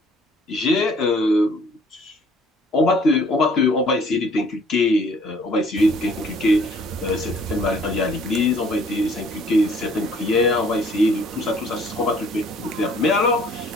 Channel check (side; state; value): both; normal; correlation 0.57